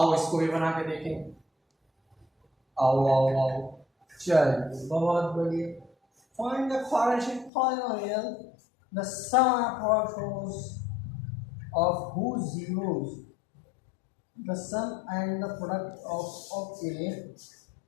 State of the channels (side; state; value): right; drops out; at 7.5 s